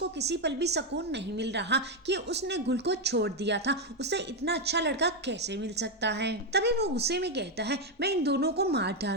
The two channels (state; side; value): normal; both; correlation 0.05